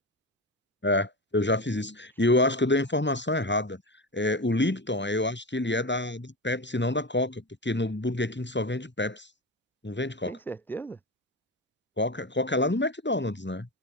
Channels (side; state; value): both; normal; correlation 0.22